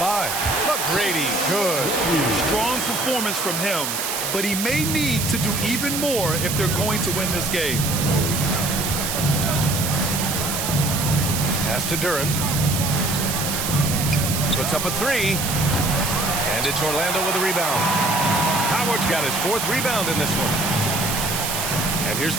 McGrady, good. Strong performance from him, but he may need to do even more if they're going to win this game. Pass to Duren. Puts up a three. And it's Orlando with a rebound. Howard's got his fourth rebound in this one. And here's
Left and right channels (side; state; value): right; noise; hiss, 2 dB below the sound